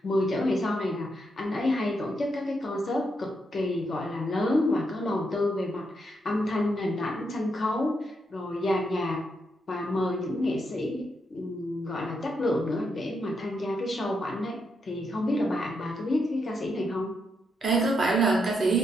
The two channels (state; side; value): normal; both; correlation 0.80